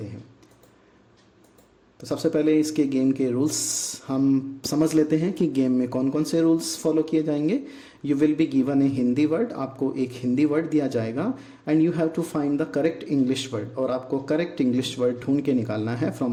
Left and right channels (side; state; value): both; identical; correlation 1.00